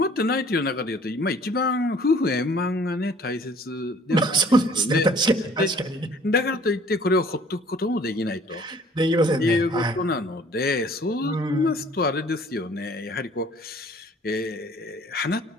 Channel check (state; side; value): normal; both; correlation 0.54